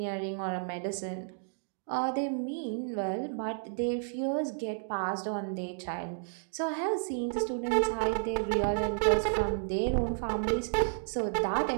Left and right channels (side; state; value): left; silent; digital silence